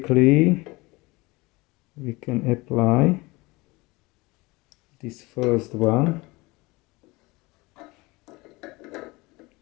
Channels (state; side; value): quieter; right; 23.2 dB